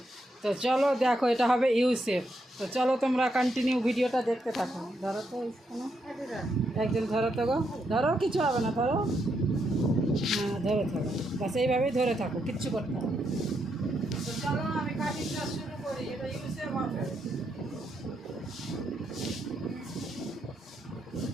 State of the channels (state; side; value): normal; both; correlation 0.80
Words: তো চলো দেখো এটা হবে ইউ শেপ। তো চলো তোমরা কন্টিনিউ ভিডিওটা দেখতে থাকো। ধরো তো কোনো একজন ধরো তো গো, ধরো কিছু হবে না, ধরো হ্যাঁ ধরে থাকো, বাস এইভাবেই ধরে থাকো, কিচ্ছু করতে হবে। তো চলো আমি কাটিংটা শুরু করি। এটা ইউ শেপ হবে।